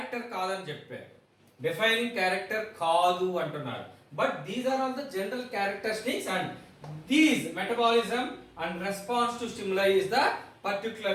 కాదని చెప్పారు. డెఫైనింగ్ క్యారెక్టర్ కాదు అంటున్నారు. But these are all the general characteristics and these metabolism and response to stimuli is the particular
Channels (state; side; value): identical; both; correlation 1.00